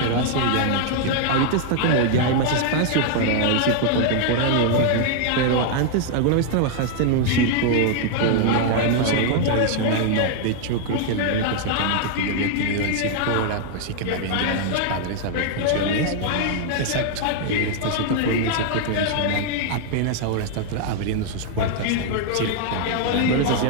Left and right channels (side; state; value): both; different; correlation 0.00